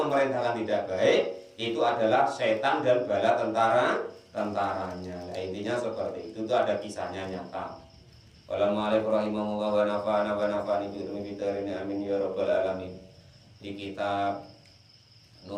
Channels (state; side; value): identical; both; correlation 1.00